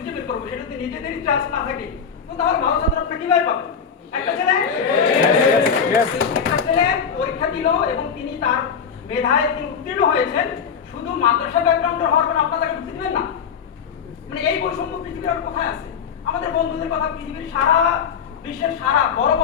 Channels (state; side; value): quieter; right; 6.7 dB